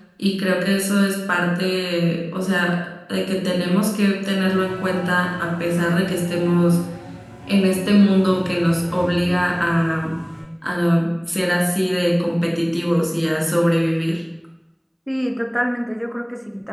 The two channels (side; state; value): both; identical; correlation 1.00